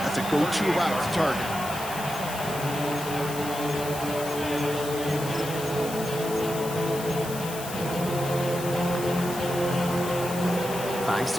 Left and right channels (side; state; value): left; noise; hiss, 10 dB below the sound